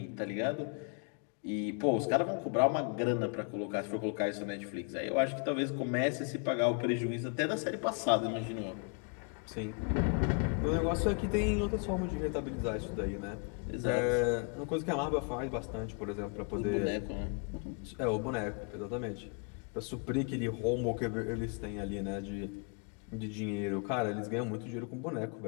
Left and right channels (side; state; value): right; quieter; 37.9 dB